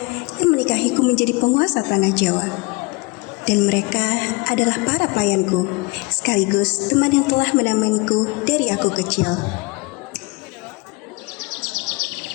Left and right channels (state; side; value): quieter; right; 25.9 dB